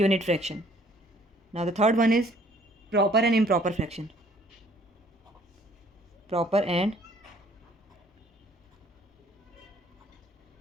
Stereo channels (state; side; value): normal; both; correlation 0.59